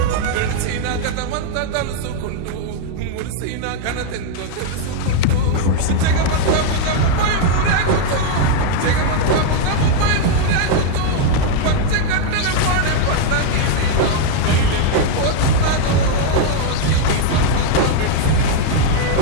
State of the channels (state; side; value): different; both; correlation 0.00